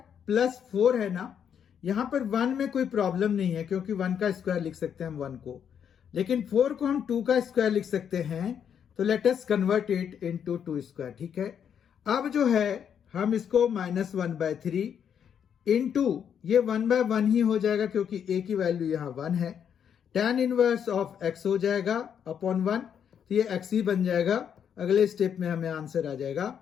प्लस 4 है ना। यहां पर 1 में कोई प्रॉब्लम नहीं है क्योंकि 1 का स्क्वायर लिख सकते हैं हम 1 को, लेकिन 4 को हम 2 का स्क्वायर लिख सकते हैं। तो let us convert it into 2 square, ठीक है। अब जो है हम इसको -1/3 इंटू ये 1/1 ही हो जाएगा क्योंकि a की वैल्यू यहां 1 है। tan इनवर्स ऑफ x हो जाएगा अपॉन 1, तो ये x ही बन जाएगा। अगले स्टेप में हमें आंसर आ जाएगा।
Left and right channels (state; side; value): quieter; right; 8.2 dB